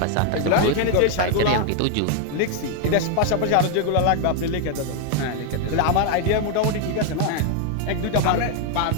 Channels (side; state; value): both; different; correlation 0.00